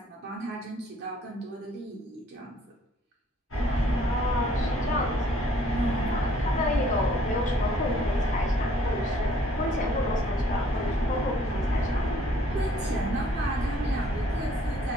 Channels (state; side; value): normal; both; correlation 0.61